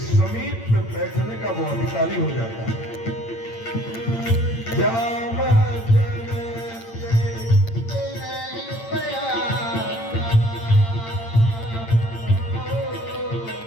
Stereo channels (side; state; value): right; late; 8.8 ms